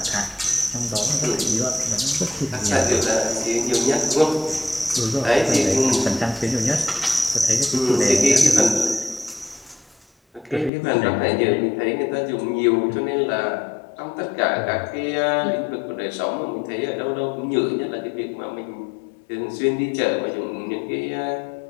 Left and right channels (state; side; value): drops out; right; at 10.7 s